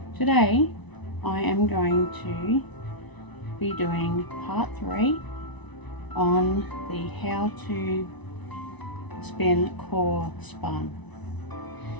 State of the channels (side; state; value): right; late; 1.0 ms